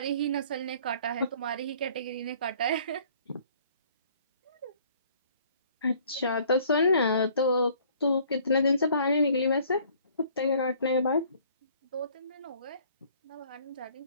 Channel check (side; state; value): both; inverted; correlation -0.57